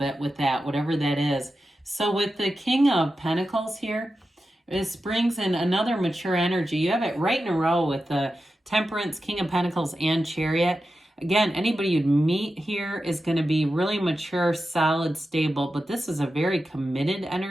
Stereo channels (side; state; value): both; normal; correlation 0.91